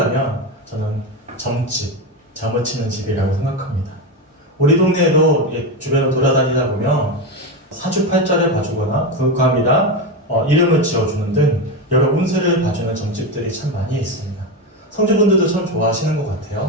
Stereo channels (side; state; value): both; normal; correlation 0.15